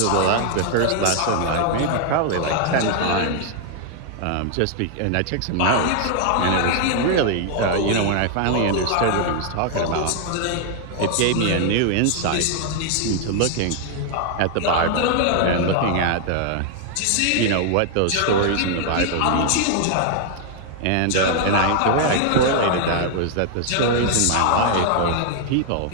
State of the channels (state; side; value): different; both; correlation 0.00